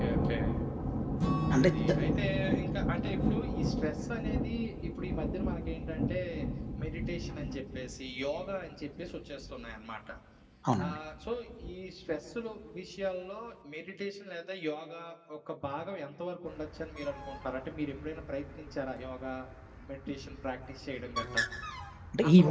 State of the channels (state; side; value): identical; both; correlation 1.00